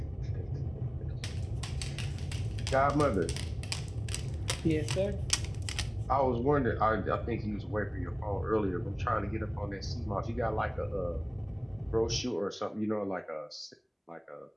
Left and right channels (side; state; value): both; identical; correlation 1.00